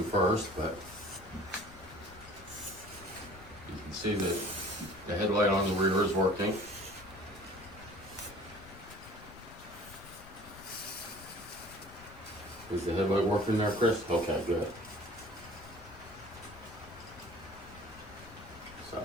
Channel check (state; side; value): noise; left; rumble, 18 dB below the sound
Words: first, but you can see that the headlight on the rear is working. Is the headlight working there, Chris? Okay, good. So